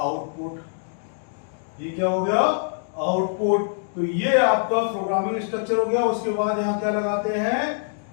ये क्या हो गया? आउटपुट। तो ये आपका प्रोग्रामिंग स्ट्रक्चर हो गया। उसके बाद यहां क्या लगाते हैं?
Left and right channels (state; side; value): silent; right; digital silence